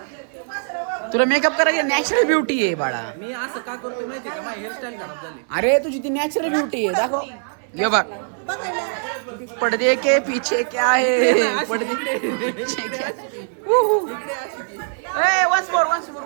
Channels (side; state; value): left; silent; 64 dB below the other